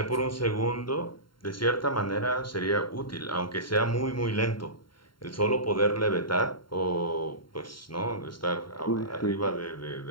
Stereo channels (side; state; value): right; late; 0.72 ms